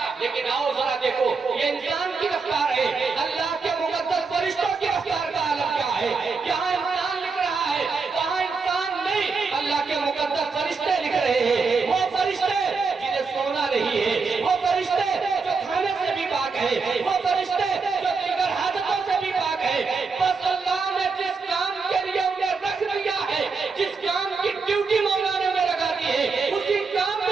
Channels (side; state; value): left; quieter; 4.7 dB